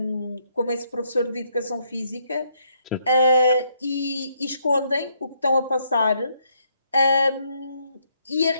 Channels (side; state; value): both; inverted; correlation -0.72